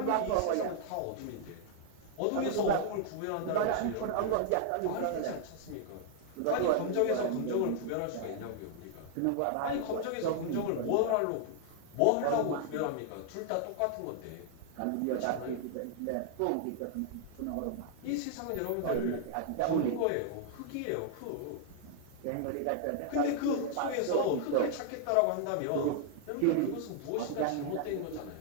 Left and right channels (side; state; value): both; different; correlation -0.01